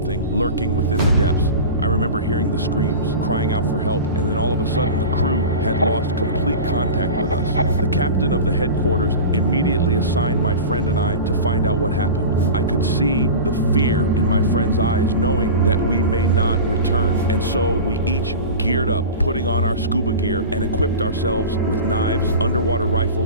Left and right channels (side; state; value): both; inverted; correlation -0.31